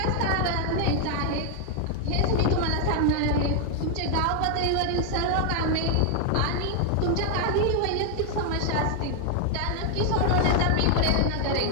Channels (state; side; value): different; both; correlation 0.00